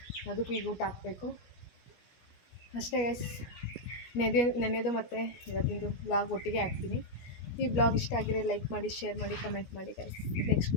ಅದಕ್ಕೂ ಈಗ ಊಟ ಹಾಕಬೇಕು ಅಷ್ಟೇ ಗೈಸ್. ನೆನೆದು ಮತ್ತು ಇವತ್ತಿಂದು ವ್ಲಾಗ್ ಒಟ್ಟಿಗೆ ಹಾಕ್ತೀನಿ. ಈ ವ್ಲಾಗ್ ಇಷ್ಟ ಆಗಿರೋ ಲೈಕ್ ಮಾಡಿ, ಶೇರ್ ಮಾಡಿ, ಕಮೆಂಟ್ ಮಾಡಿ ಗೈಸ್. ನೆಕ್ಸ್ಟ್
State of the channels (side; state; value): right; late; 17 ms